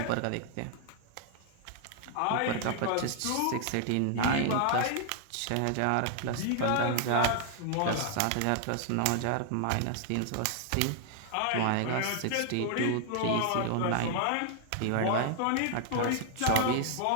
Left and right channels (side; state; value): both; different; correlation 0.00